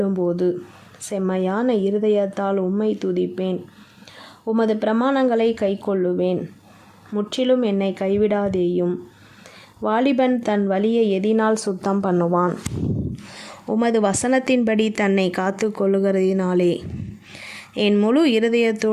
செம்மையான இருதயத்தால் உம்மை துதிப்பேன். உமது பிரமாணங்களை கைக்கொள்ளுவேன். முற்றிலும் என்னை கைவிடாதேயும். வாலிபன் தன் வழியை எதினால் சுத்தம் பண்ணுவான்? உமது வசனத்தின்படி தன்னை காத்து கொள்ளுகிறதினாலே. என் முழு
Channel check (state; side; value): identical; both; correlation 1.00